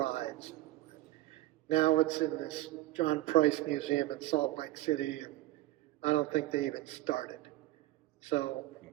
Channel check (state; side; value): quieter; left; 16.7 dB